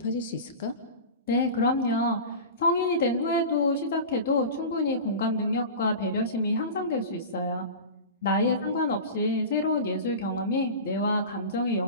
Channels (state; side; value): inverted; both; correlation -0.31